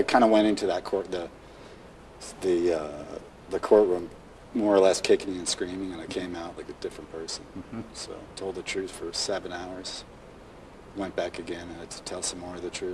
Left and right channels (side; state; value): both; identical; correlation 1.00